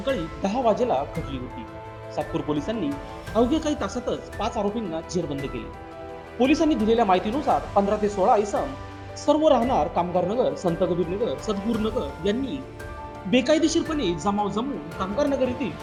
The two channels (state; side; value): identical; both; correlation 1.00